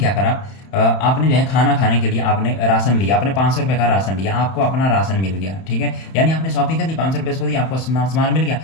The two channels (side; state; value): right; late; 31 ms